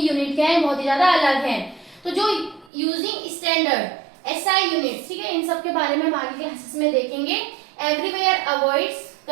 यूनिट क्या है, बहुत ही ज्यादा अलग हैं। तो जो यूजिंग स्टैंडर्ड एसआई यूनिट्स, ठीक है, इन सब के बारे में हम आगे क्लासेस में देखेंगे। Everywhere avoids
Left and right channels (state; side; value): drops out; left; at 2.7 s